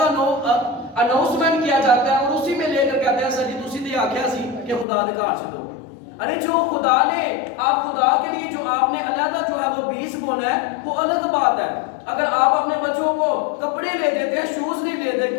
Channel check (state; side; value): drops out; right; at 4.9 s